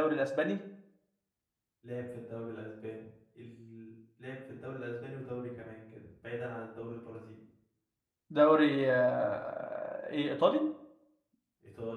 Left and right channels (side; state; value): both; identical; correlation 1.00